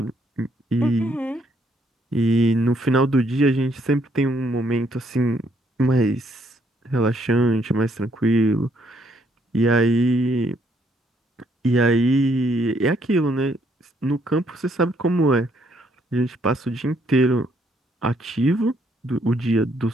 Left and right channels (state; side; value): normal; both; correlation 0.70